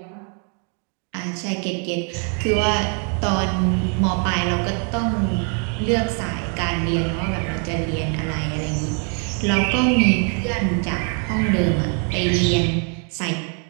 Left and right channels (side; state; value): left; quieter; 40.0 dB